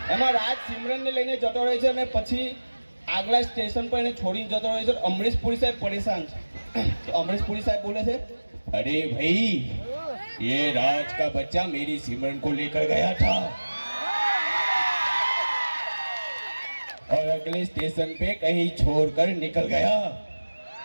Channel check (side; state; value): both; inverted; correlation -1.00